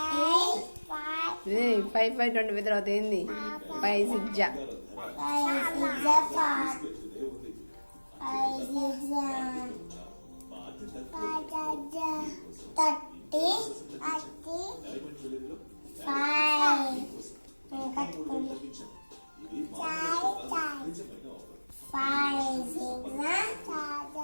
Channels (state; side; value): inverted; both; correlation -1.00